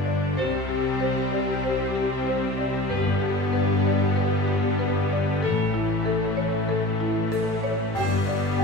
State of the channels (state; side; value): normal; both; correlation 0.37